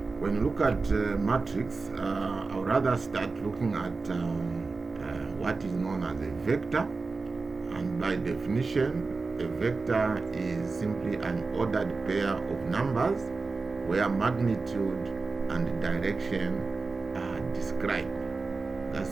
When you look at matrix, I would rather start looking at what is known as a vector. And by definition, a vector is simply an ordered pair of numbers where magnitude and direction are described. That's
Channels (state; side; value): quieter; left; 4.0 dB